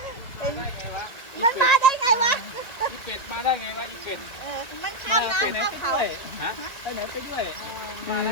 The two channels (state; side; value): late; right; 2.4 ms